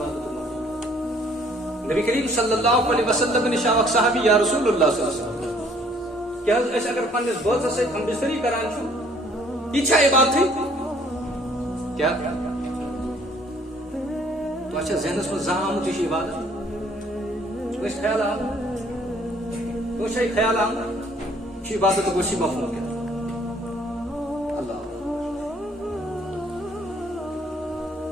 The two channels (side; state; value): both; normal; correlation 0.60